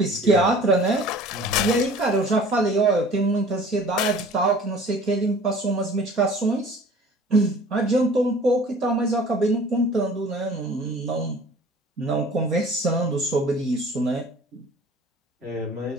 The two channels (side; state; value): both; normal; correlation 0.47